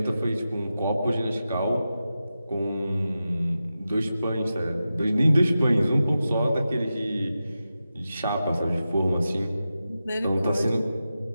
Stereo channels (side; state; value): both; inverted; correlation -0.92